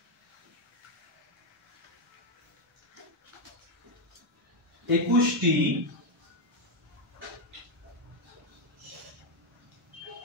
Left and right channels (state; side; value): normal; both; correlation 0.04